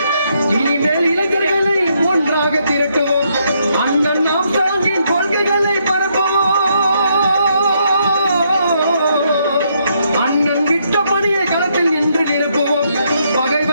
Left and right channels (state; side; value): inverted; both; correlation -0.75